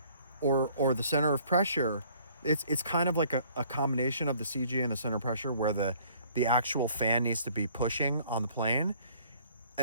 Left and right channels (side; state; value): both; inverted; correlation -0.58